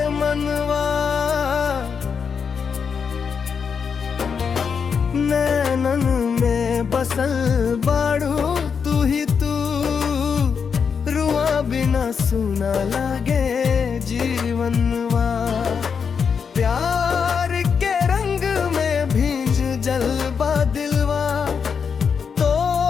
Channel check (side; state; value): right; quieter; 6.3 dB